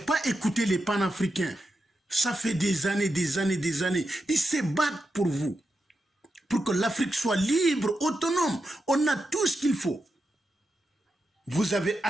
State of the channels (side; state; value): both; normal; correlation 0.88